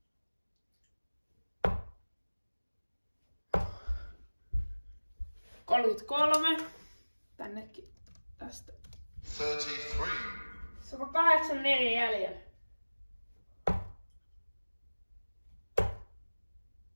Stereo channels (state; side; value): inverted; both; correlation -1.00